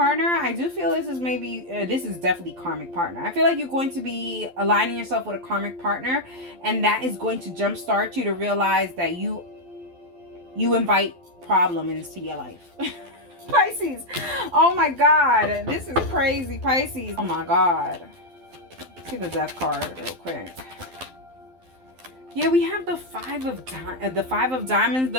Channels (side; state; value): left; late; 12 ms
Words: I do feel this is maybe, this is definitely karmic partner. I feel like you're going to be aligning yourself with a karmic partner, and that is going to jumpstart you to realize that you invite problem into your life. Pisces, oh my God, this is crazy, Pisces. Oh my God. See the Death card real quick. Yeah, we have the Five of Diamonds,